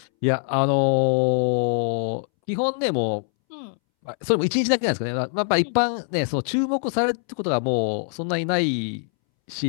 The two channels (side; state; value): right; silent; 63 dB below the other